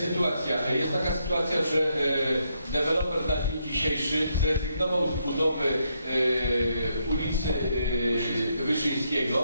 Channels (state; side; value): inverted; both; correlation -0.78